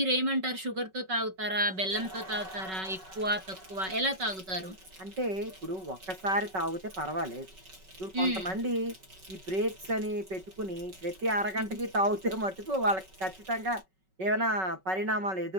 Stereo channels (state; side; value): late; left; 5.3 ms